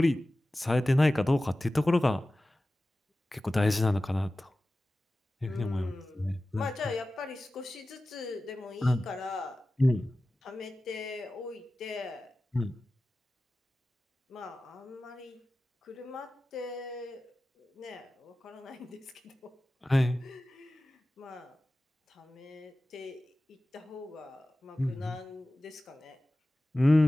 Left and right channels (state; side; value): normal; both; correlation 0.96